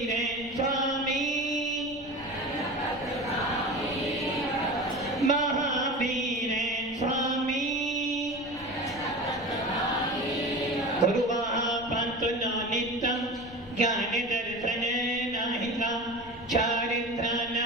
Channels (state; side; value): noise; left; rumble, 20 dB below the sound